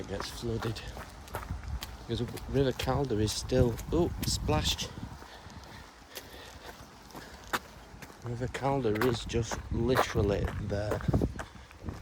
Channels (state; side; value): identical; both; correlation 1.00